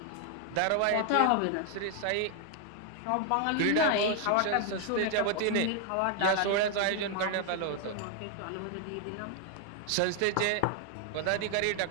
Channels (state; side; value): different; both; correlation 0.00